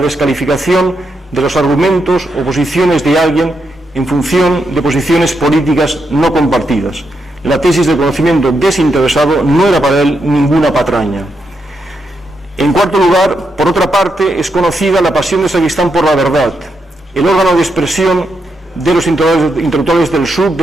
de los argumentos o posiciones de alguien en función de posiciones políticas no compartidas. La tesis del conocimiento desinteresado no era para él ninguna patraña. En cuarto lugar, por otra parte, es conocida la pasión de Sacristán por la verdad. El órgano de expresión de los intelectuales del sur de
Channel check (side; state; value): both; normal; correlation 0.82